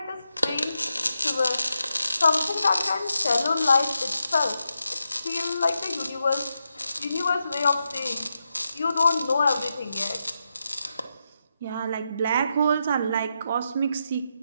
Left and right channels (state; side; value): inverted; both; correlation -0.85